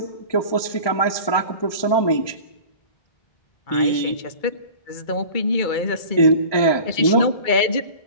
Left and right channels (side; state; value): right; late; 1.2 ms